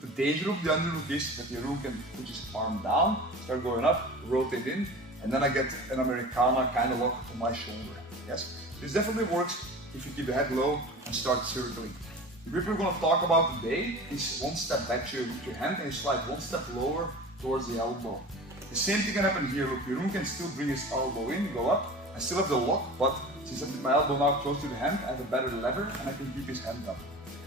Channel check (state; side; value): normal; both; correlation 0.36